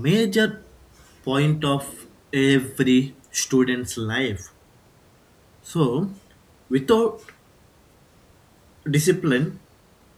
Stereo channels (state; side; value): identical; both; correlation 1.00